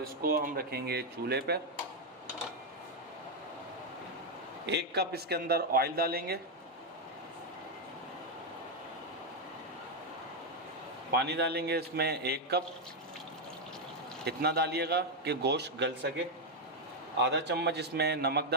इसको हम रखेंगे चूल्हे पर। 1 कप इसके अंदर ऑयल डालेंगे। पानी डालेंगे इसमें 1 कप। इतना डालिएगा कि गोश्त गल सके। आधा चम्मच इसमें नमक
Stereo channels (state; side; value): normal; both; correlation 0.02